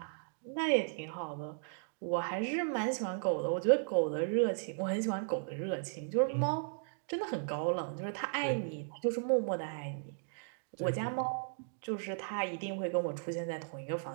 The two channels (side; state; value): left; silent; digital silence